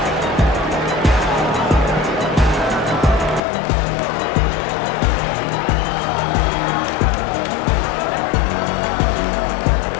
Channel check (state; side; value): drops out; right; at 3.4 s